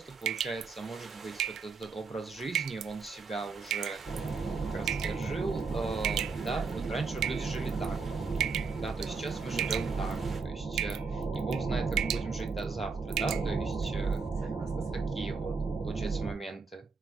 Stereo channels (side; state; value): left; quieter; 4.8 dB